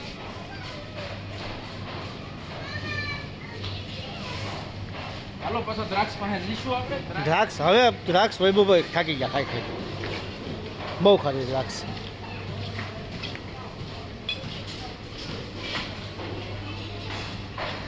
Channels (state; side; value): identical; both; correlation 1.00